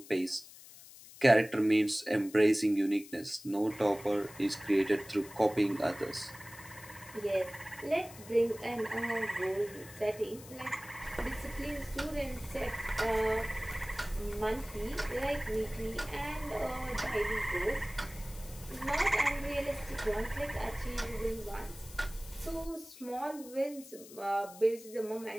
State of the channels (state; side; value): noise; left; hiss, 18 dB below the sound